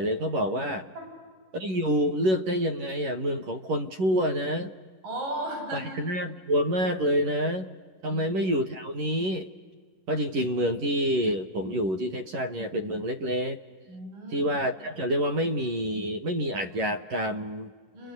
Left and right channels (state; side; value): late; left; 11 ms